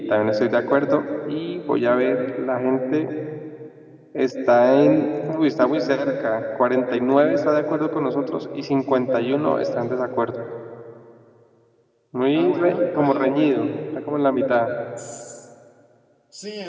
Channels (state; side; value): identical; both; correlation 1.00